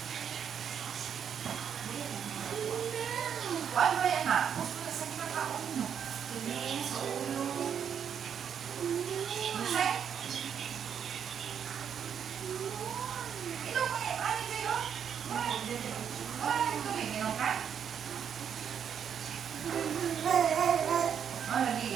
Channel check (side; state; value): left; quieter; 8.1 dB